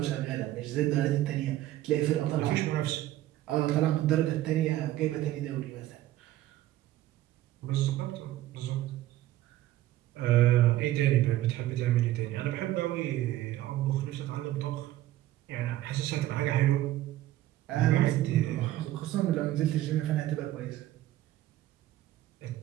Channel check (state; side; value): quieter; left; 14.6 dB